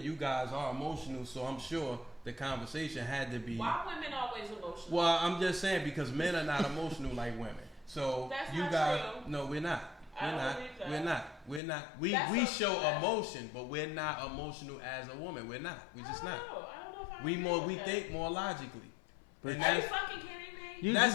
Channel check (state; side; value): drops out; right; at 11.6 s